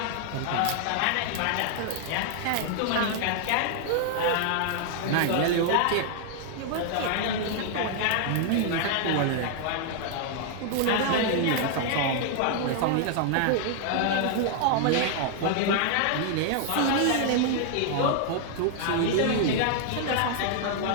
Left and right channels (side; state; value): both; different; correlation 0.00